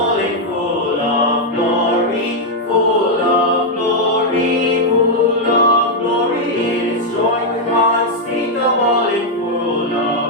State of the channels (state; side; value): normal; both; correlation -0.01